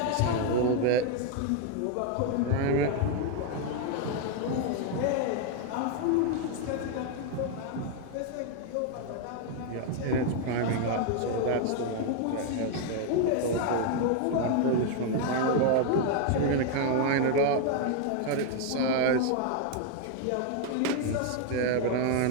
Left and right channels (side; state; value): both; different; correlation 0.00